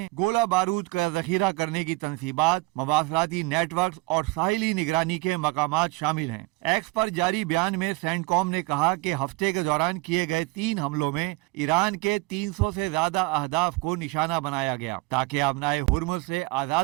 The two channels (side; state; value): left; quieter; 23.4 dB